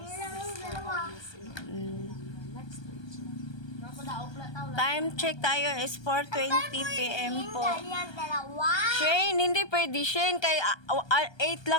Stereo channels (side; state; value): right; late; 1.2 ms